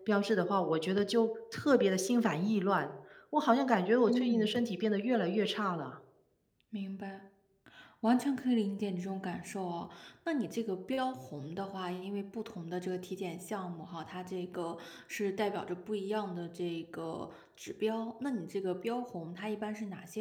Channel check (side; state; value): both; identical; correlation 1.00